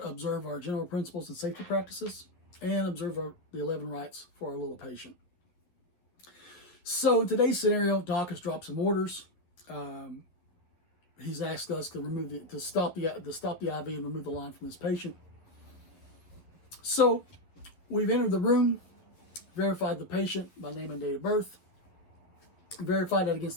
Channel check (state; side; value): late; right; 11 ms